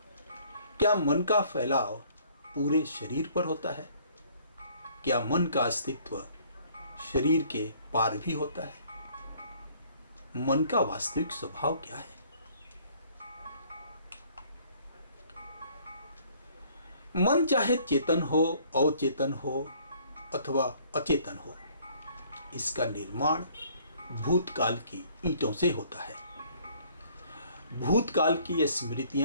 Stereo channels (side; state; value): both; inverted; correlation -0.59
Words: क्या मन का फैलाव पूरे शरीर पर होता है? क्या मन का अस्तित्व शरीर के पार भी होता है? मन का वास्तविक स्वभाव क्या है? मन चाहे चेतन हो, अवचेतन हो अथवा अचेतन हो, इसका निर्माण भूतकाल की ईंटों से होता है। भूतकाल की ये